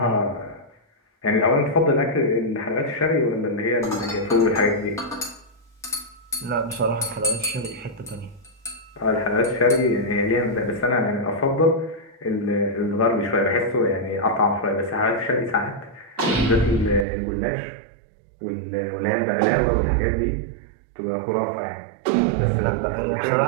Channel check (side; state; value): left; drops out; at 17.1 s